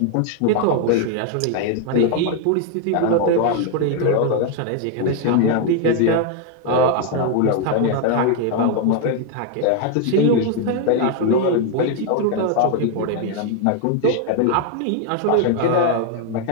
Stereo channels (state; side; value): different; both; correlation 0.01